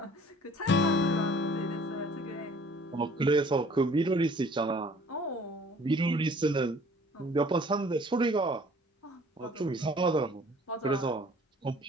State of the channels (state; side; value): normal; both; correlation 0.53